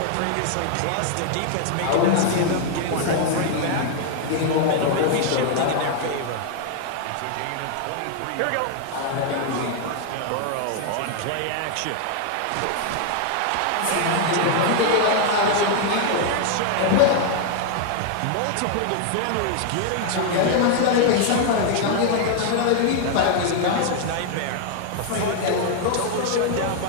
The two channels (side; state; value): both; different; correlation 0.00